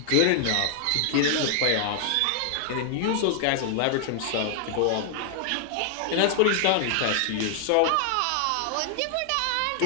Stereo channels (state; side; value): different; both; correlation 0.00